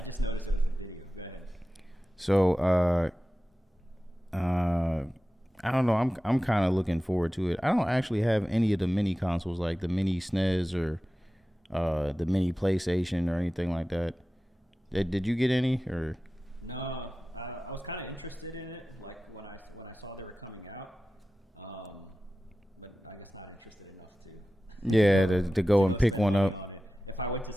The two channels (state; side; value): normal; both; correlation 0.95